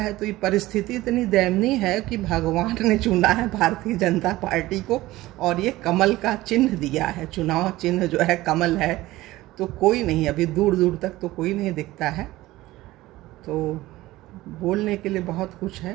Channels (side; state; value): left; quieter; 17.5 dB